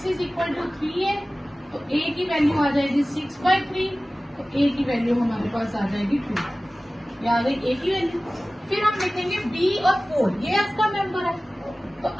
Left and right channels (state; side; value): normal; both; correlation 0.97